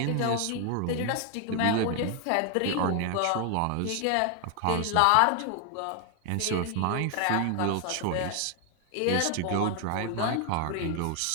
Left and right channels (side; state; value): both; different; correlation 0.00